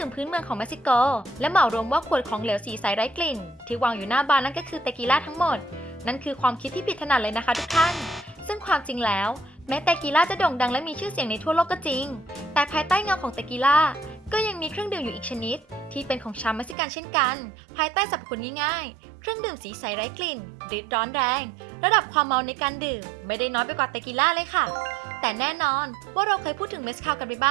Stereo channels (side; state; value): left; drops out; at 16.8 s